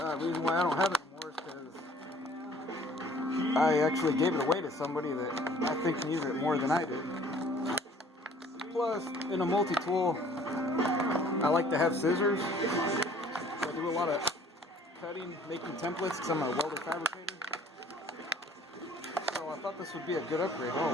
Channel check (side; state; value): both; normal; correlation 0.54